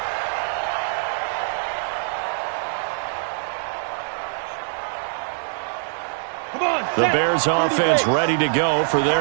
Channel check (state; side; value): silent; left; digital silence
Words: The Bears offense ready to go for their